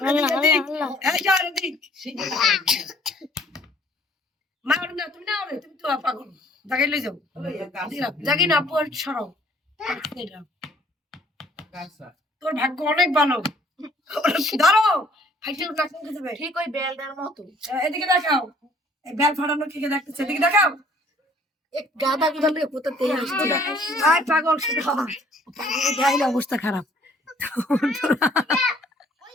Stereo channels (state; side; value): normal; both; correlation 0.59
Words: এই চল দিক মার না তুমি না তুমি তো পাগল জায়গায় লই যাও জায়গায় না পর সরাও তোর ভাগ্য অনেক ভালো ধরো ফাইটে উঠা কোন যাবে ঠিক ওই বেলটার মতো এদিকে দেখাও এই বেল ফাটানো কে দেখতেছে এদিকে দেখাও এক গাদা গুদালে কোথাতে আসছে আয় পাগল শুধু পাগল গাইলে অবস্থা খারাপ